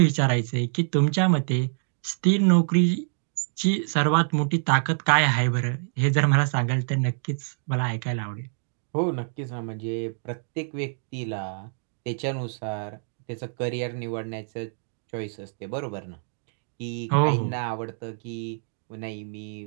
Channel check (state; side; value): silent; left; digital silence